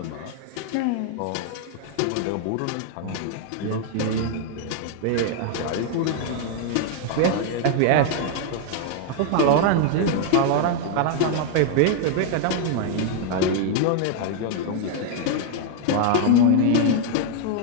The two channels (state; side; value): different; both; correlation 0.00